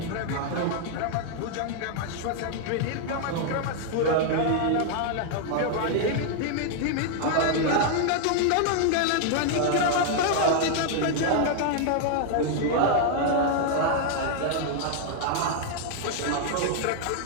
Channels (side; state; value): both; different; correlation 0.00